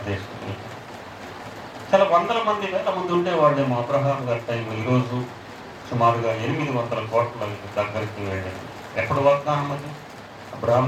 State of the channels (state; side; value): identical; both; correlation 1.00